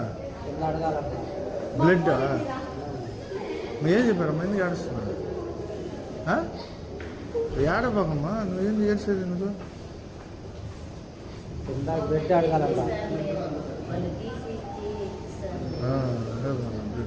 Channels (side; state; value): both; identical; correlation 1.00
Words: బ్లడ్ ఏం చెప్పారమ్మా ఎందుకు ఏడుస్తున్నా ఏడబాకమ్మా నువ్వేంది ఏడ్చేది నువ్వు బ్లడ్ అడగాలంట